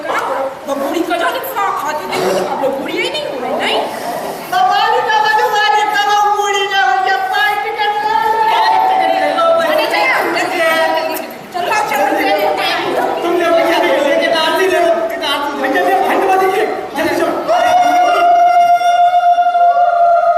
कहा वो बूढ़ी का जाने खा खाते देखो तो अब लोग बूढ़ी ही नहीं हो रही नहीं बालिका बदल वाले का वो बूढ़ी ना हो या पाई टिकट ले लो अरे जल्दी चलो तुम ले भैया लेके आरती ले लो कितना आरती भैया ले घंटा दीजिए जल्दी चलो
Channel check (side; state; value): both; identical; correlation 1.00